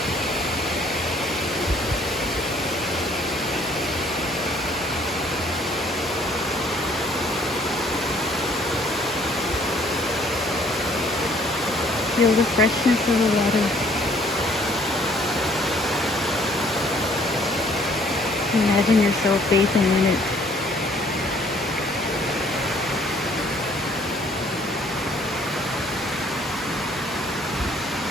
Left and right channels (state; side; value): normal; both; correlation 0.61